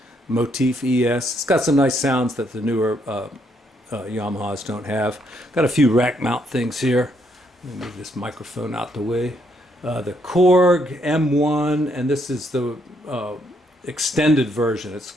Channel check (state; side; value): normal; both; correlation 0.73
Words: Motif ES. It's got some nice sounds that the newer Yamahas don't have. Got a few rack mount things here. Let me move this microphone out the way. The Korg M1, and this is the extended version. It's